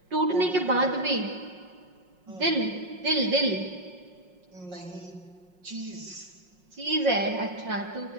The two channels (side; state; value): left; late; 5.5 ms